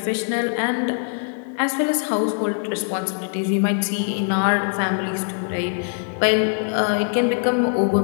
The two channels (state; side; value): silent; right; 64 dB below the other